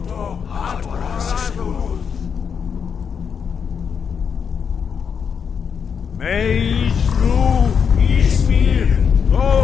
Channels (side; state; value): right; quieter; 6.8 dB